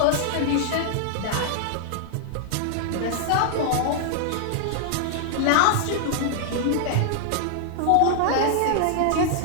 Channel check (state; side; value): different; both; correlation -0.01